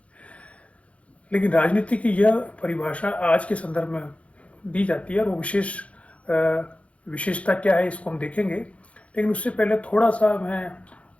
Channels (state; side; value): late; right; 0.063 ms